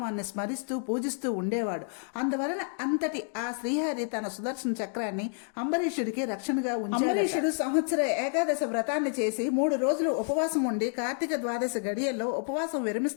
స్మరిస్తూ పూజిస్తూ ఉండేవాడు. అందువలన అంతటి ఆ శ్రీహరి తన సుదర్శన చక్రాన్ని అంబరీషుడికి రక్షణగా ఉంచాడు. అంబరీషుడు సంవత్సర ఏకాదశ వ్రతాన్ని చేసి 3 రోజులు ఉపవాసం ఉండి కార్తీక ద్వాదశ గడియల్లో ఉపవాసం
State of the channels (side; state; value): right; silent; 55 dB below the other